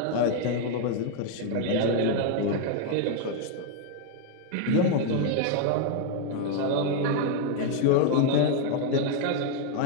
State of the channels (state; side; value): different; both; correlation 0.00